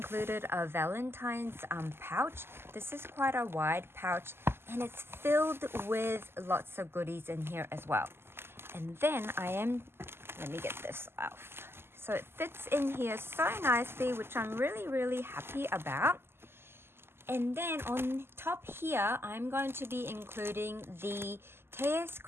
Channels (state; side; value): late; left; 0.12 ms